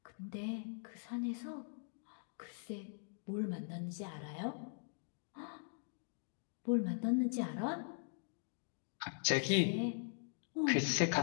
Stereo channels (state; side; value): silent; right; digital silence